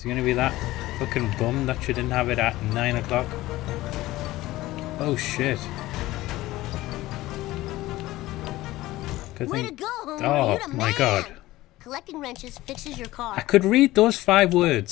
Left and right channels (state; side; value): quieter; right; 17.3 dB